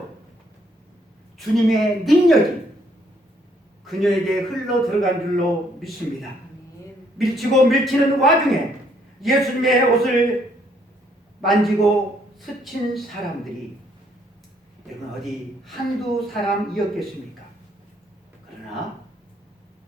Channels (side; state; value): both; normal; correlation 0.68